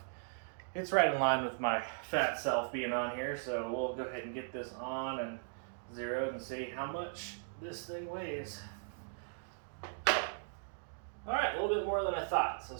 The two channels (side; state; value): left; silent; digital silence